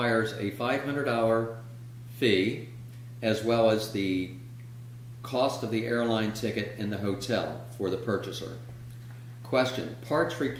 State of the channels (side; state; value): both; identical; correlation 1.00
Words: a $500 fee, as well as the cost of the airline ticket and the hotel for the purchaser. Question, parts